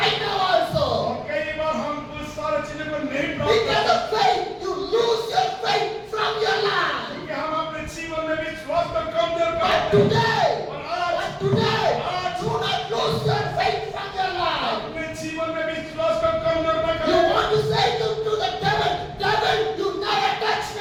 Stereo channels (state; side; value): identical; both; correlation 1.00